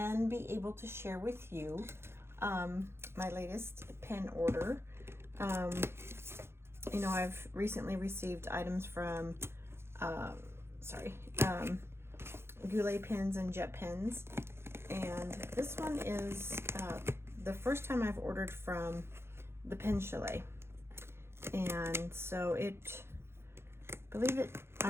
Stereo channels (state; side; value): late; left; 0.12 ms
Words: be able to share with you my latest pen order. You know, I've recently received items from Goulet pens and jet pens, and this one is the first time I've ordered from the Pen Chalet. And so I